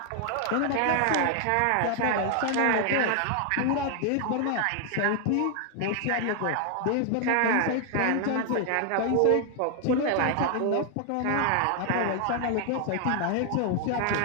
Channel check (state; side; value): different; both; correlation 0.00